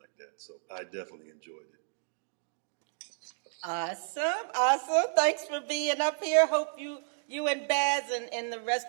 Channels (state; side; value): silent; left; digital silence